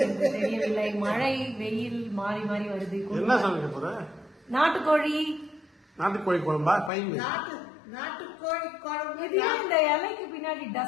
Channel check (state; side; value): drops out; right; at 6.9 s